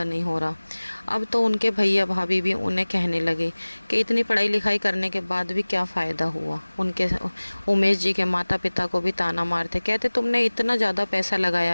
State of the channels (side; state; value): both; inverted; correlation -1.00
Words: नहीं हो रहा। अब तो उनके भैया भाभी भी उन्हें कहने लगे कि इतनी पढ़ाई लिखाई करने के बाद भी क्या फ़ायदा हुआ। उनके उमेश जी के माता पिता को भी ताना मारते, कहते तुमने इतना ज़्यादा पैसा